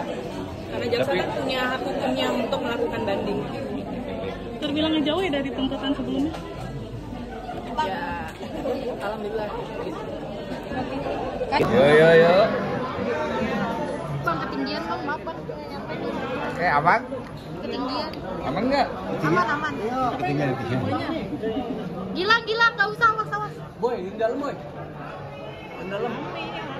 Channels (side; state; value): both; identical; correlation 1.00